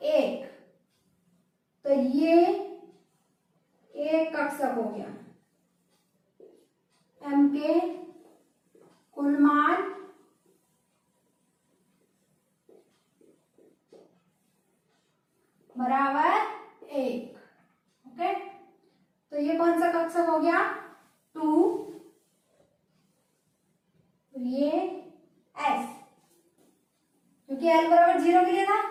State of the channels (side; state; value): both; identical; correlation 1.00